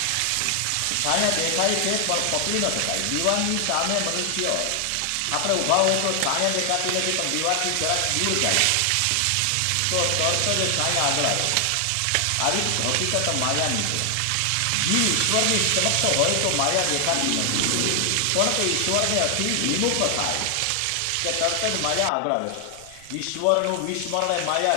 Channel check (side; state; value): both; different; correlation 0.00